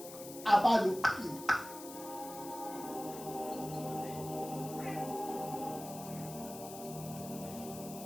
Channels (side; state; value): left; noise; hiss, 13 dB below the sound